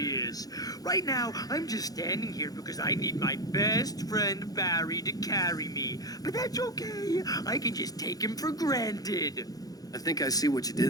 Right now, I'm just standing here because I need my best friend Barry to carry me. But that's okay. I can just take him for granted. I think I see what you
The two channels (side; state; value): right; late; 0.18 ms